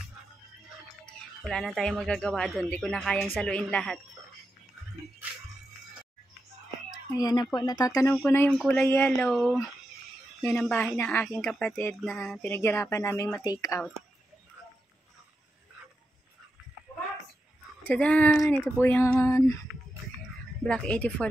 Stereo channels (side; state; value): both; normal; correlation 0.87